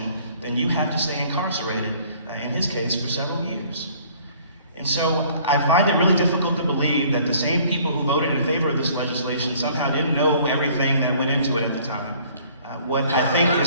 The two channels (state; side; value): inverted; both; correlation -0.56